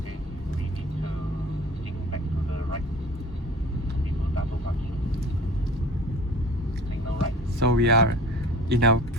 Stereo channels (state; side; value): normal; both; correlation 0.43